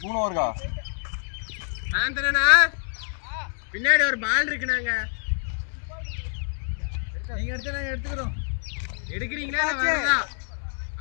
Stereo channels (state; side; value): silent; right; digital silence